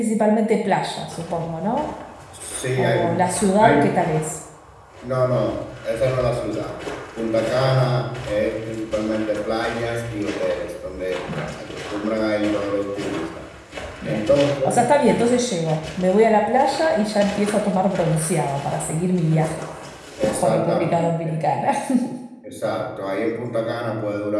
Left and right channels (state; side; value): identical; both; correlation 1.00